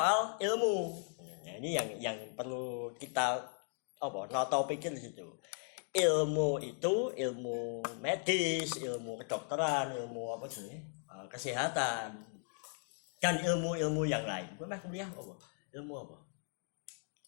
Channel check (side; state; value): right; silent; 53 dB below the other